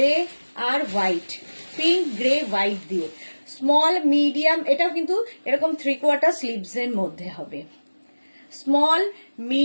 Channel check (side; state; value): both; inverted; correlation -1.00